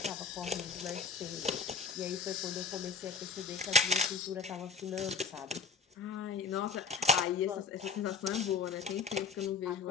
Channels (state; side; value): quieter; right; 4.7 dB